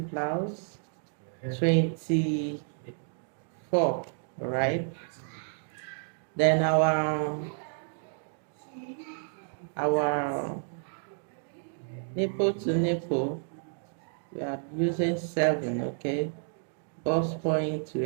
blouse, 24, right? Then our nipple to nipple, we are using 7, okay? Bust point,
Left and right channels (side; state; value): left; silent; digital silence